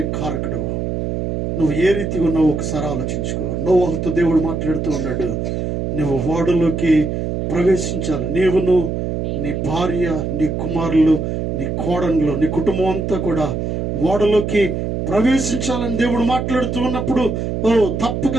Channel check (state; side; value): noise; right; hum, 2 dB below the sound